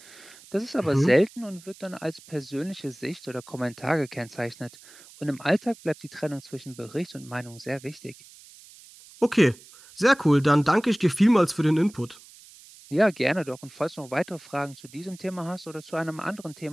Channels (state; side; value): noise; right; hiss, 22 dB below the sound